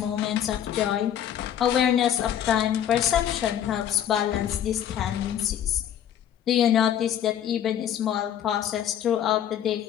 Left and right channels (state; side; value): quieter; right; 10.1 dB